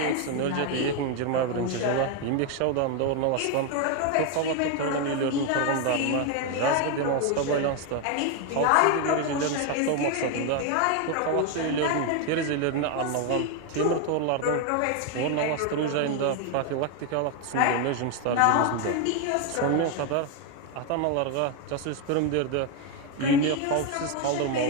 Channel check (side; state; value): both; different; correlation 0.01